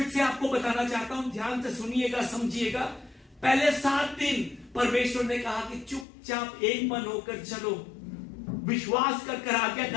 से आपको बताना चाहता हूं, ध्यान से सुनिएगा, समझिएगा। पहले 7 दिन परमेश्वर ने कहा कि चुपचाप एक मन होकर चलो, विश्वास कर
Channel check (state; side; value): drops out; right; at 6.1 s